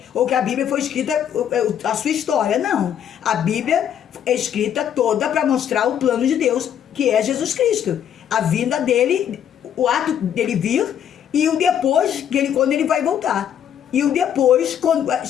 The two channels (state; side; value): quieter; right; 9.4 dB